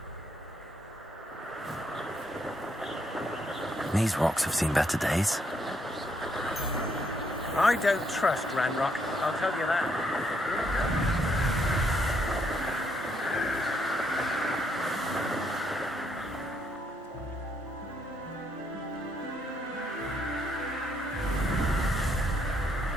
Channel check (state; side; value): normal; both; correlation 0.74